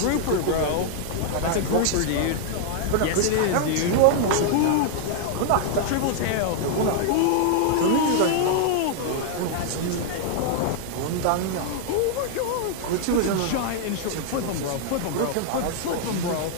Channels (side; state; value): both; different; correlation -0.01